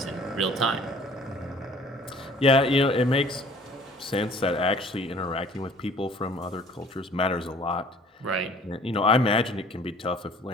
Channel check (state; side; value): normal; both; correlation 0.52